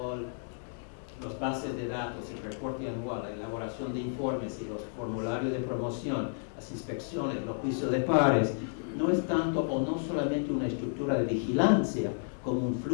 Los bases de datos, el reporte anual, la elaboración de informes y los formularios de promoción, las inspecciones, los juicios de pares, no es tanto o no solamente una estructura de vigilancia, como un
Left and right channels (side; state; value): right; silent; digital silence